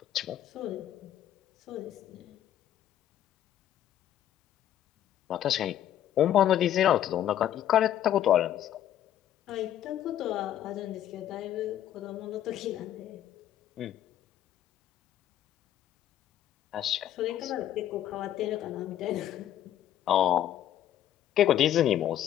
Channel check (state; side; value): quieter; right; 11.4 dB